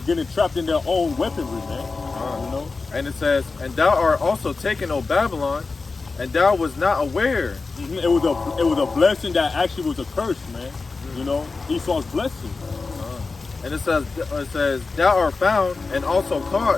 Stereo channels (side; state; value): right; quieter; 4.1 dB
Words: trapped in their own weaponry, man. You know? And it says, and thou art also taken, O Babylon, and thou was not aware. It was a blessing that actually was a curse, man. You know, Esau's blessing. And it says, thou art found and also